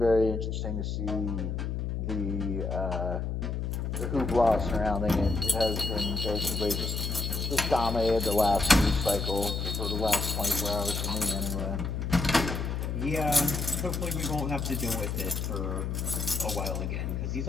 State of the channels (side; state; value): left; noise; hum, 2 dB below the sound